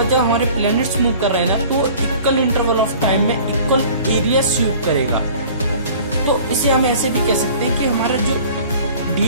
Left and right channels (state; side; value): inverted; both; correlation -0.47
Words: जब हमारे प्लैनेट्स मूव कर रहे हैं ना तो इक्वल इंटरवल ऑफ टाइम में इक्वल एरिया स्वीप करेगा। तो इसे हम ऐसे भी कह सकते हैं कि हमारा जो